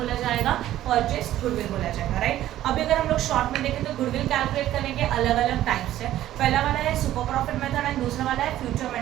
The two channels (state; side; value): quieter; left; 13.4 dB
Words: जाएगा? परचेज्ड गुडविल बोला जाएगा, राइट। अभी अगर हम लोग शॉर्ट में देखें तो गुडविल कैलकुलेट करने के अलग अलग टाइप्स है। पहला वाला है सुपर प्रॉफिट मेथड एंड दूसरा वाला है future